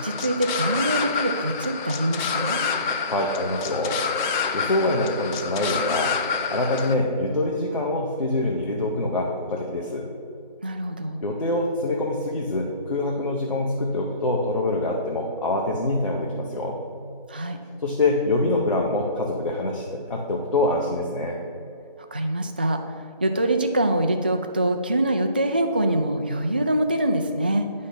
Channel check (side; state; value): both; inverted; correlation -0.46